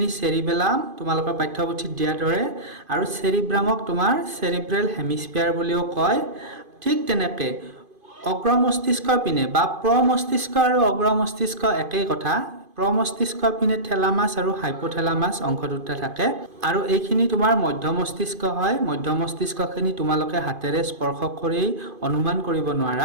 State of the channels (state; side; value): late; left; 2.5 ms